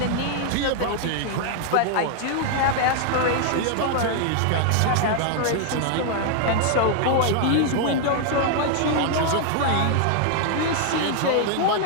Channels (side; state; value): both; different; correlation 0.00